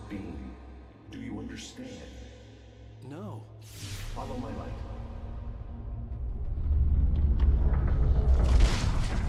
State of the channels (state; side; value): identical; both; correlation 1.00